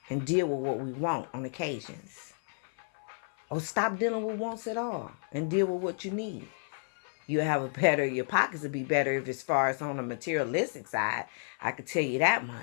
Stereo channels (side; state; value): right; silent; 57 dB below the other